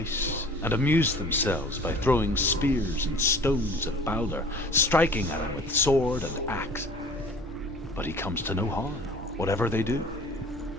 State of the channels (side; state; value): both; normal; correlation 0.46